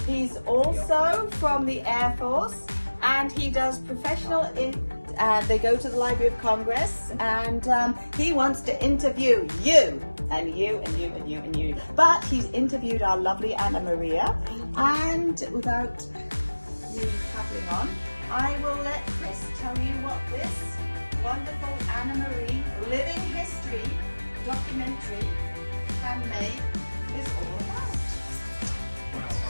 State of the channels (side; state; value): both; inverted; correlation -1.00